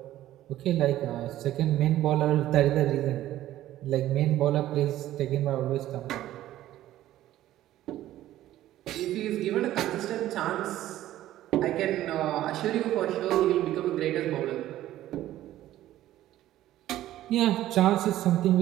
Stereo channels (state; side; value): quieter; left; 13.9 dB